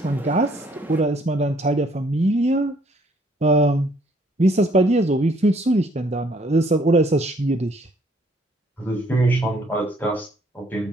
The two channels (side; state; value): both; normal; correlation 0.63